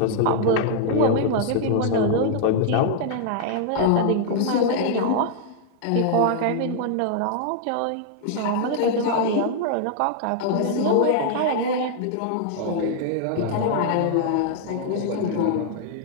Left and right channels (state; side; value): different; both; correlation -0.01